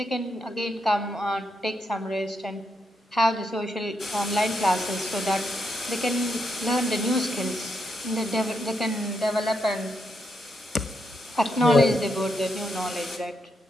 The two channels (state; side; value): normal; both; correlation 0.81